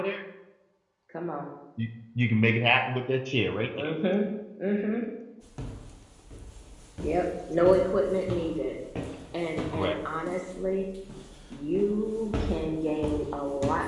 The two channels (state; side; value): identical; both; correlation 1.00